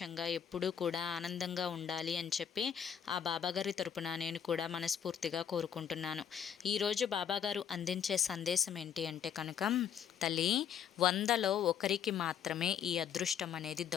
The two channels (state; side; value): quieter; right; 8.6 dB